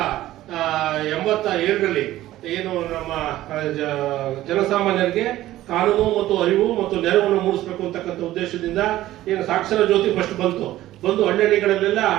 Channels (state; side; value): quieter; left; 14.9 dB